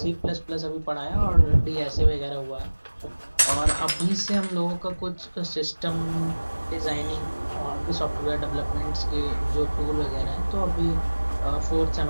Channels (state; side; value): inverted; both; correlation -1.00